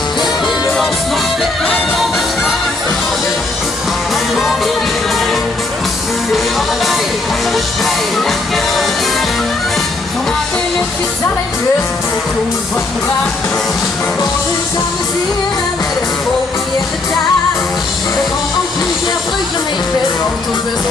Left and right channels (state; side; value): quieter; right; 3.2 dB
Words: Det bliver også nok lidt, når man snakker det. Han går vi videre. Det holder dig, og det spejl, jeg gør det igen. Kom her til lidt, vi tager den løse på kloden for den var. Hvor det samme siger, med det folk i hjælpe der. Det går om plus, jeg frygter mig i fed, og du vil